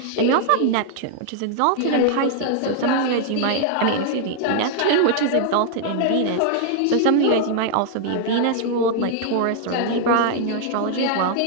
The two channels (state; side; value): different; both; correlation -0.01